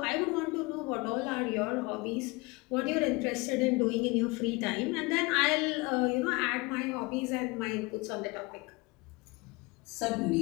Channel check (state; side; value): quieter; right; 25.4 dB